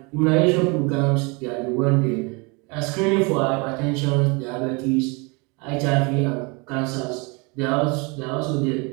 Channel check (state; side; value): quieter; left; 29.4 dB